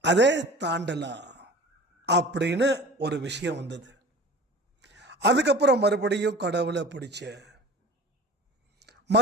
அப்படின்னு ஒரு விஷயம் வந்தது. அதுக்கப்புறம் மறுபடியும் கடவுளை பிடிச்ச,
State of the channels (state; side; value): normal; both; correlation 0.40